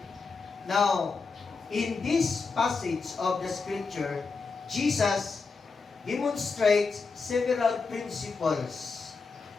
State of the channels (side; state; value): right; quieter; 4.6 dB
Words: now, in this passage of the scripture, Jesus demonstrates several principles